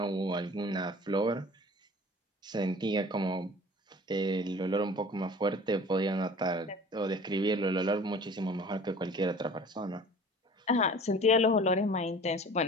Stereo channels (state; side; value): normal; both; correlation 0.45